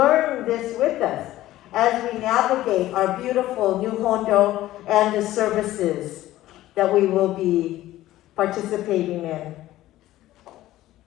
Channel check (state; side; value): quieter; right; 15.1 dB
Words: this with us as we navigate our beautiful new Hondo and the services that we will be participating in.